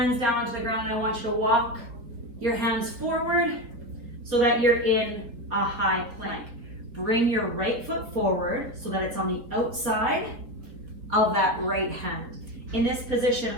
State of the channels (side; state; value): left; late; 4.4 ms